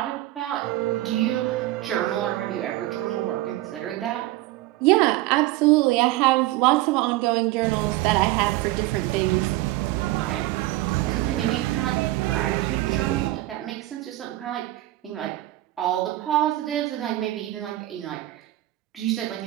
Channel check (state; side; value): quieter; left; 16.9 dB